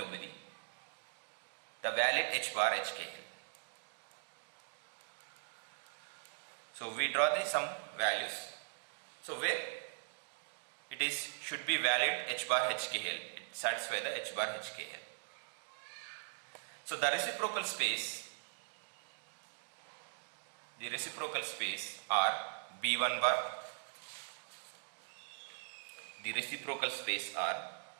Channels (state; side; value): silent; left; digital silence